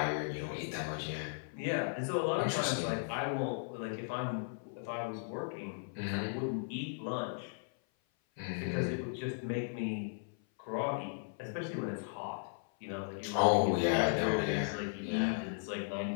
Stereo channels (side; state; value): right; silent; 54 dB below the other